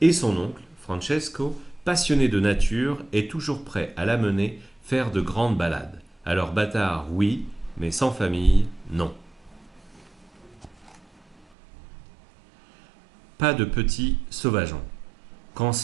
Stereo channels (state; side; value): drops out; left; at 11.5 s